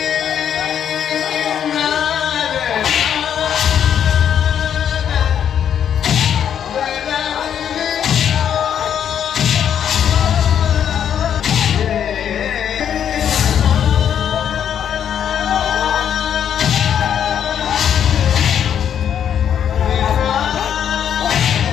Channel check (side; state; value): right; quieter; 9.0 dB